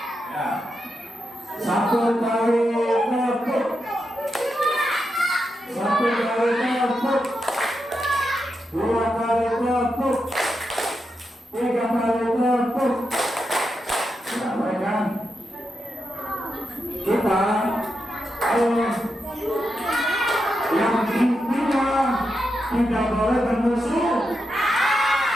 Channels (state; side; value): normal; both; correlation 0.86